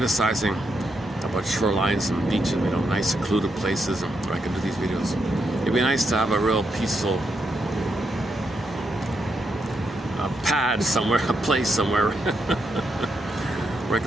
about shorelines and beaches, nice secluded places where I can do these videos. It'd be nice to have a real peaceful pad somewhere, a place somewhere where I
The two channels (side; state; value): both; normal; correlation 0.81